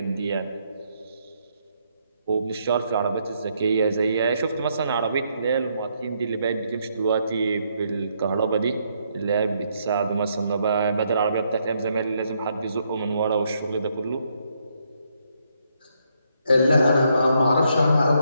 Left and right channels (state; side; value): inverted; both; correlation -0.75